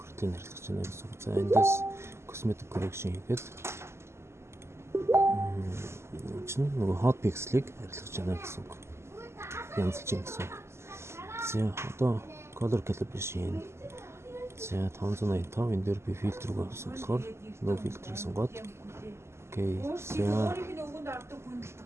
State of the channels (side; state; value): left; late; 0.13 ms